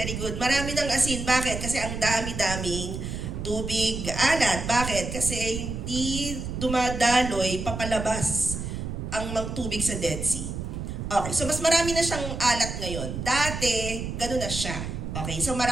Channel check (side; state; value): right; noise; rumble, 5 dB below the sound